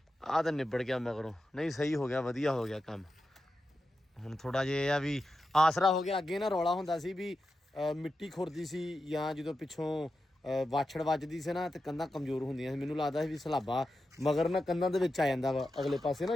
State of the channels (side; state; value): both; normal; correlation 0.90